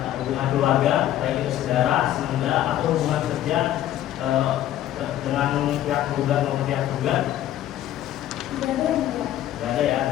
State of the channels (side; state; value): right; quieter; 12.6 dB